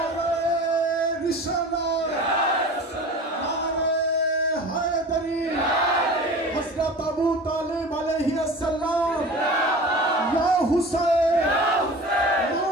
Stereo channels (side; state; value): both; normal; correlation 0.37